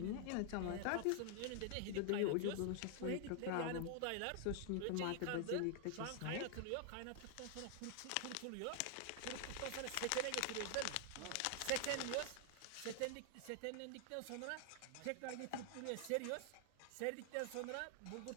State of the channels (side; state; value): both; different; correlation 0.00